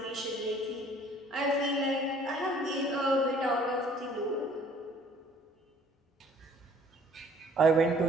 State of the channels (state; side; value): normal; both; correlation 0.56